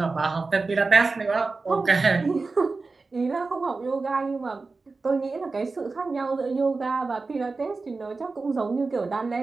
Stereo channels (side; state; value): left; quieter; 3.9 dB